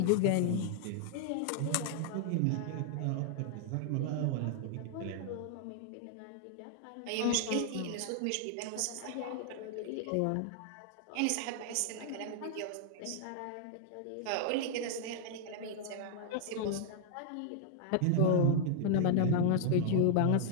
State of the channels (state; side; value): different; both; correlation 0.00